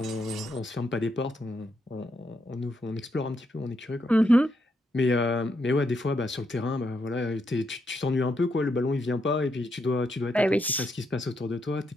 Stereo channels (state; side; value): normal; both; correlation 0.79